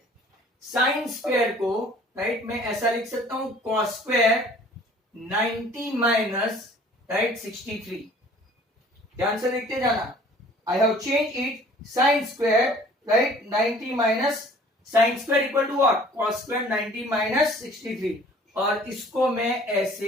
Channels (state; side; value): normal; both; correlation 0.52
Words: साइन स्क्वायर को राइट मैं ऐसा लिख सकता हूं, कॉस स्क्वायर 90 माइनस राइट 63। ध्यान से देखते जाना, I have change it, sine square right 90 minus sine square equal to what, cos square 90 minus 63, और इसको मैं ऐसे